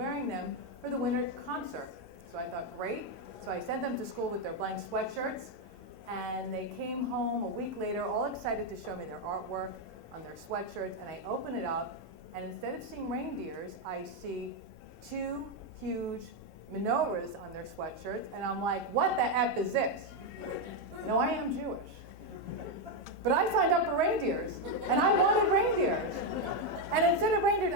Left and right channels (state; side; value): normal; both; correlation 0.04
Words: them for the winter concert. So I thought, great. So I sent them to school with their blank sweatshirts, and they came home a week later all excited to show me their artwork on their sweatshirts, and I open it up, and instead of seeing reindeers, I see two huge menorahs on their sweatshirts, and I'm like, what the F is this? No, I am Jewish. But I signed up for reindeers, and I wanted reindeers. And instead of reindeers,